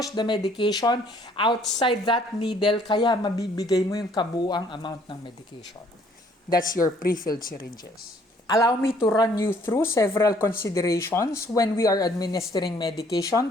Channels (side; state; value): both; normal; correlation 0.61